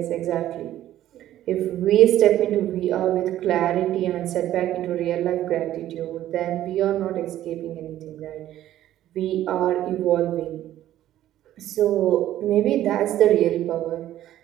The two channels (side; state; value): left; quieter; 13.0 dB